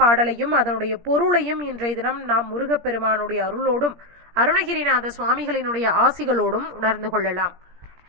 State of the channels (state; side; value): late; left; 17 ms